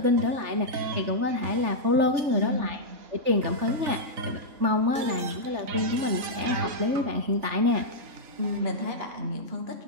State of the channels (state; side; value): late; left; 3.4 ms